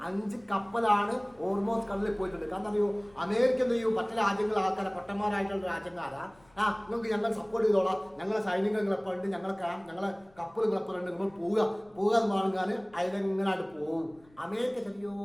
5 കപ്പലാണ് ഓർമോസ് കടലിൽ പോയിട്ടുണ്ട്. കാരണം അറിയോ, അമേരിക്ക എന്ത് ചെയ്യും, മറ്റു രാജ്യങ്ങൾ ആൾക്കാരെ പൊട്ടന്മാരായിട്ടുള്ള രാജ്യക്കാരാ നിങ്ങൾക്ക് ഞങ്ങൾ സപ്പോർട്ട് ചെയ്തോളാം, ഞങ്ങളെ സൈനികർ നിങ്ങളെപ്പോഴുണ്ട്, ഞങ്ങളെ കപ്പൽ നിങ്ങളെപ്പോഴുണ്ട്, നിങ്ങൾ പോവുക എന്ന് പറഞ്ഞാൽ അതിലെങ്ങനായിട്ട് പോകും. അമേരിക്ക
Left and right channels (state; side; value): noise; left; rumble, 29 dB below the sound